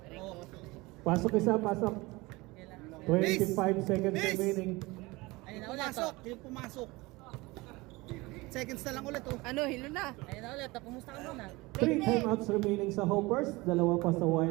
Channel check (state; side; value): quieter; left; 22.5 dB